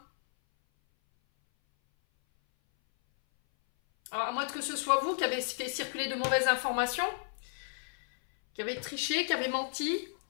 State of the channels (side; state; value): right; silent; 56 dB below the other